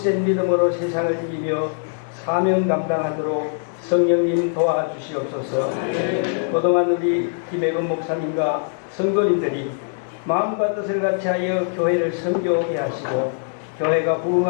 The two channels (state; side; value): silent; right; digital silence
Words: 믿음으로 세상을 이기며 사명 감당하도록 성령님 도와주시옵소서. 그동안 우리 김혜근 목사님과 성도님들이 마음과 뜻을 같이하여 교회를 섬겨오게 하시고 교회가